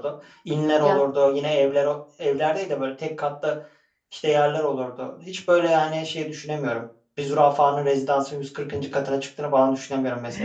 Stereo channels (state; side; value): identical; both; correlation 1.00